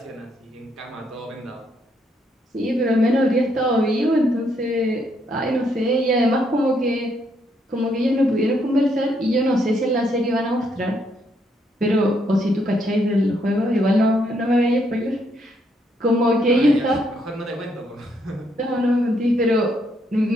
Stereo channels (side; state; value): both; normal; correlation 0.74